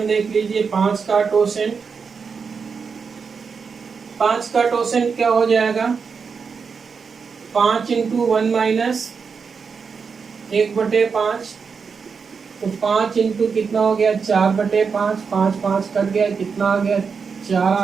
देख लीजिए। 5 का टोसेंट, 5 का टोसेंट क्या हो जाएगा, 5 इंटू 1 माइनस 1/5, तो 5 इंटू कितना हो गया 4/5, 5 5 कट गया, कितना आ गया 4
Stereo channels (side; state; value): left; quieter; 5.6 dB